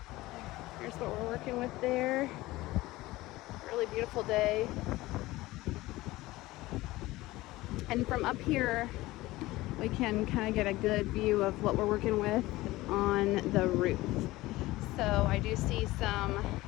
Here's what we're working with there. Really beautiful day. And from up here, we can kind of get a good view of what we're working with on the roof. So I do see some,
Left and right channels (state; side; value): quieter; right; 18.6 dB